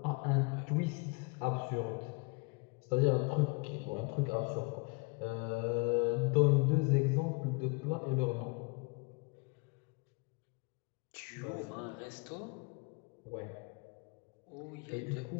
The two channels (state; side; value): quieter; right; 31.6 dB